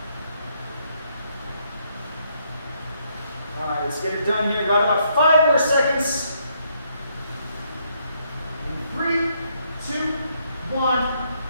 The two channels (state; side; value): inverted; both; correlation -0.73